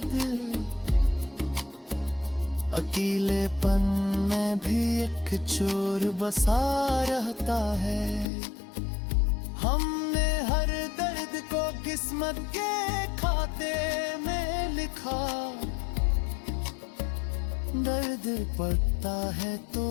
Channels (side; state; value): right; drops out; at 8.3 s